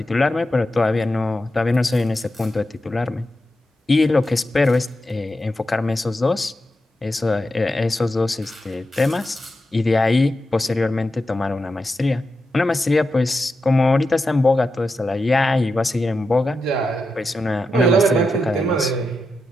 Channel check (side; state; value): both; normal; correlation 0.89